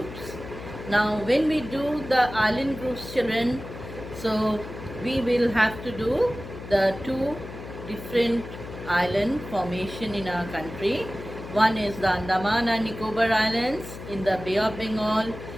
Now, when we do the island groups, children, so we will have to do the two different island formation in our country. One is the Andaman and Nicobar Islands in the Bay of Bengal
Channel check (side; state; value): left; noise; hum, 12 dB below the sound